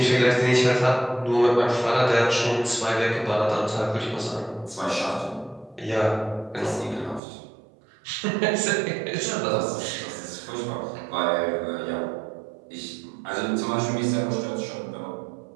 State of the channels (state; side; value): drops out; left; at 7.2 s